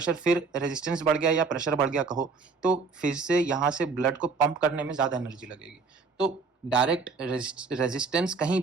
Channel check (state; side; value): quieter; left; 4.6 dB